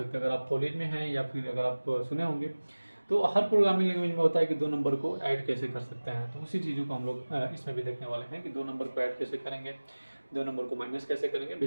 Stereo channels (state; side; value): inverted; both; correlation -1.00